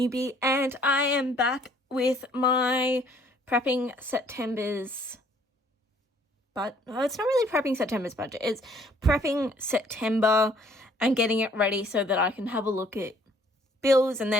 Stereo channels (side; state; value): both; normal; correlation 0.60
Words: and I am back with my prepping September's, but it's not really prepping September's budget, it's prepping September and getting it ready so that I can have a look at bills and